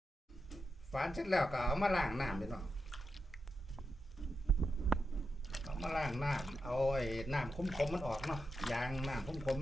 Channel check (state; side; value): normal; both; correlation 0.87